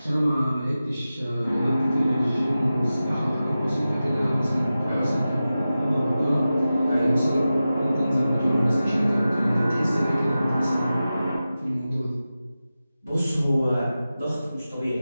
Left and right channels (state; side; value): inverted; both; correlation -0.94